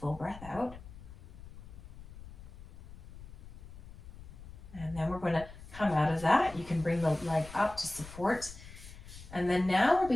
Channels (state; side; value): noise; left; rumble, 16 dB below the sound